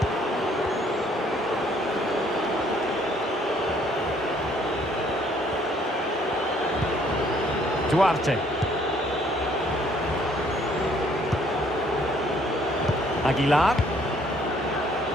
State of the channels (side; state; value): both; normal; correlation 0.63